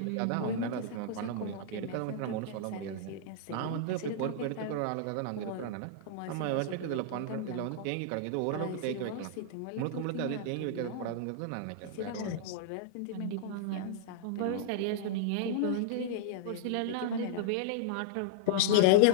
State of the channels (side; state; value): both; different; correlation -0.01